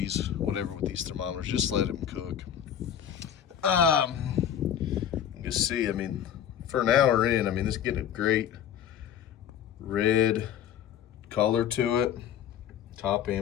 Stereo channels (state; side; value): quieter; right; 9.5 dB